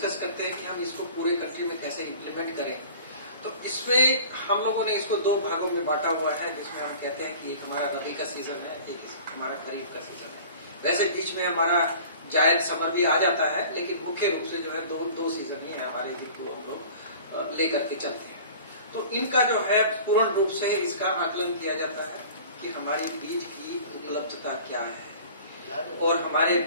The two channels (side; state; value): both; inverted; correlation -0.44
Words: करते हैं कि हम इसको पूरे कंट्री में कैसे इम्प्लीमेंट करें, तो इसमें हम लोगों ने इसको दो भागों में बांटा हुआ है, जिसमें हम कहते हैं कि एक हमारा रबी का सीजन है, एक हमारा खरीफ का सीजन है। वैसे बीच में हमारा जायद समर भी आ जाता है, लेकिन मुख्य रूप से जो है दो सीजन ही है हमारे, जिनको हम लोग लेकर के चलते हैं। तो इनका जो है पूर्ण रूप से इसका आकलन किया जाता है कि हमारी बीज की उपलब्धता क्या है, और हमारे